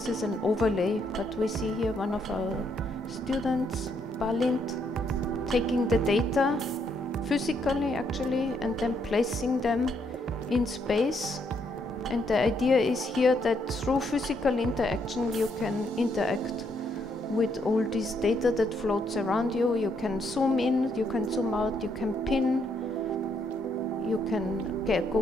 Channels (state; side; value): normal; both; correlation 0.74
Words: is an overlay. But we see here one of our students, Balint, taking the data physically actually, and then placing them in space. And the idea is here that through physical interaction you can interact with all this data that floats around you. You can zoom in, you can zoom out, you can pin, you can